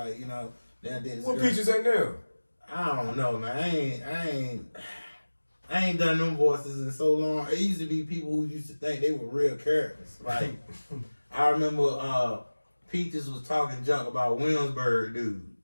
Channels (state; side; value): inverted; both; correlation -1.00